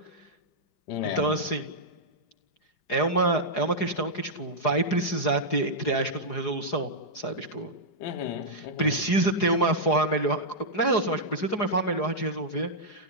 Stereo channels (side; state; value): right; late; 4.8 ms